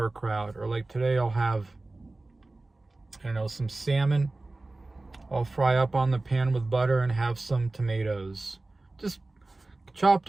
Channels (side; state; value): left; quieter; 3.1 dB